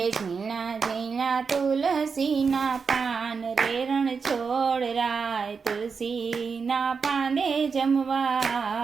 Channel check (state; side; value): quieter; left; 5.4 dB